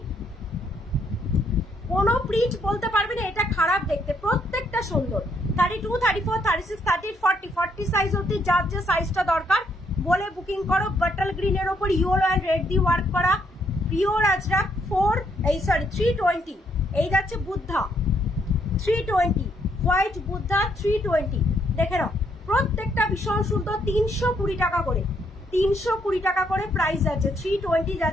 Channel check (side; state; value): both; normal; correlation 0.72